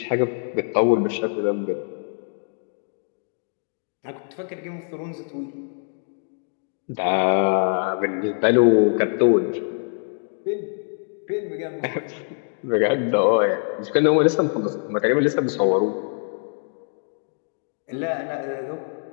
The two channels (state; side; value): silent; right; digital silence